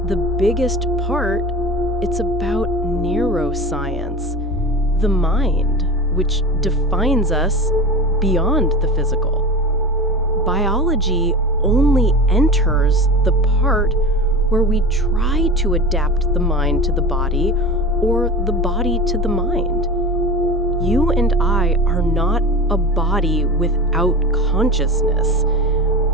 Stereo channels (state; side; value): normal; both; correlation 0.30